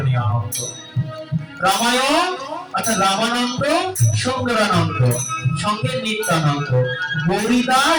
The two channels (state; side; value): identical; both; correlation 1.00